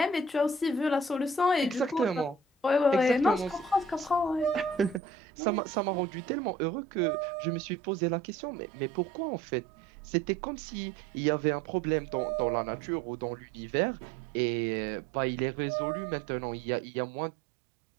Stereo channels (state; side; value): drops out; left; at 5.0 s